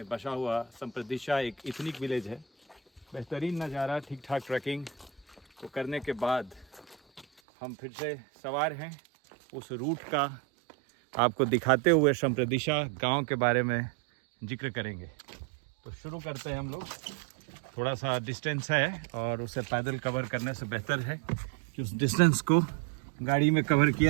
बसा हुआ संप्रदिशा एक इथनिक विलेज है। बेहतरीन नज़ारा, ठीक ठाक ट्रैकिंग को करने के बाद हम फिर से सवार हैं। उस रूट का आपको दिखाते हुए संप्रदिशा गांव के बारे में जिक्र करेंगे। तो शुरू करते हैं हम लोग। थोड़ा सा डिस्टेंस है और उसे पैदल कवर करने से बेहतर है कि उस डिस्टेंस को गाड़ी में कवर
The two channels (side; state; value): left; drops out; at 7.2 s